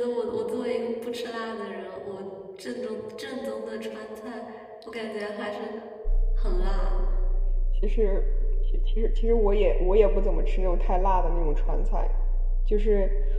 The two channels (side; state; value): both; identical; correlation 1.00